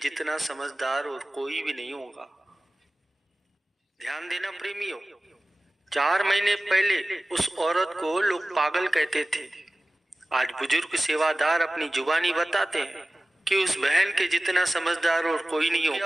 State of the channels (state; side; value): normal; both; correlation 0.97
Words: समझदार और कोई भी नहीं होगा। ध्यान देना प्रेमियों, 4 महीने पहले उस औरत को लोग पागल कहते थे। आज बुजुर्ग सेवादार अपनी जुबानी बताते हैं कि उस बहन के जितना समझदार और कोई नहीं